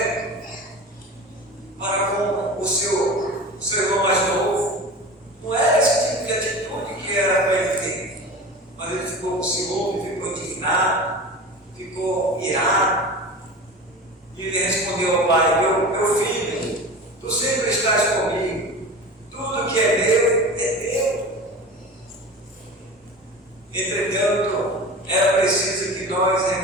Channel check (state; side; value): normal; both; correlation 0.33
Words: para com o seu irmão mais novo. Não era esse tipo de atitude que era para ele ter. Mas ele ficou com ciúme, ficou indignado, ficou irado. E ele respondeu ao pai: meu filho, tu sempre estás comigo, tudo que é meu é teu. Entretanto, era preciso que nós